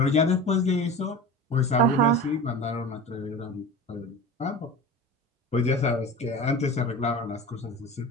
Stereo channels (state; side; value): normal; both; correlation 0.34